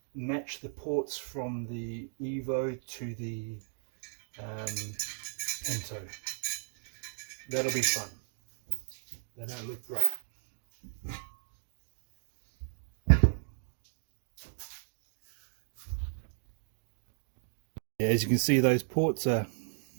match the ports from the Evo to the Pinto. That'll be fun. They don't look great. Yeah, as you can see, those ports are,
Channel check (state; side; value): silent; left; digital silence